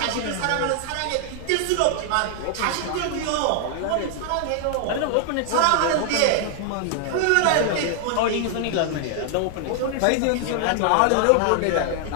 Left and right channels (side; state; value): both; different; correlation 0.00